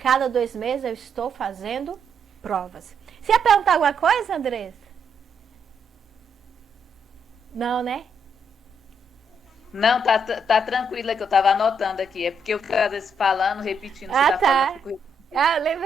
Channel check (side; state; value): both; normal; correlation 0.75